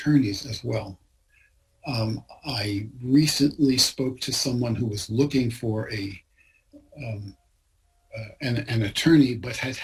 as well. I recently spoke to someone who was looking for an attorney, but had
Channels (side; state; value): both; identical; correlation 1.00